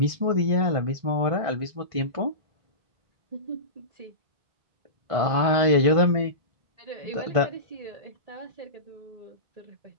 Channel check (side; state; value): left; late; 1.6 ms